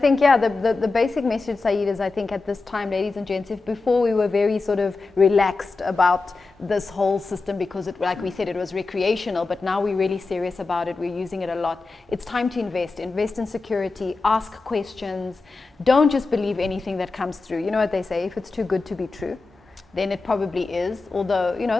yeah, the basic message, Syed, is I think at this time, ladies and gents, if before we were very sort of relaxed about this whole system because it, like we said, it was recreational, but now we're really serious about it. We're using it a lot. It's time to invest in security, ask questions. Don't just believe anything that comes through. You know what they say, if it's too good to be true, then it probably is, although, you know,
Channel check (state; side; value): quieter; right; 3.8 dB